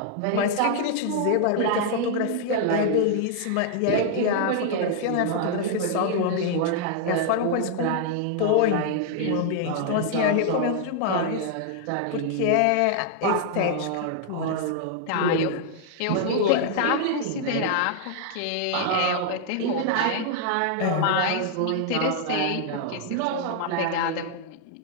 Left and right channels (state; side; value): different; both; correlation -0.01